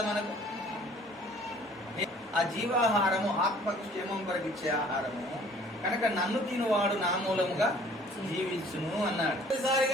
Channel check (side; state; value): both; normal; correlation 0.54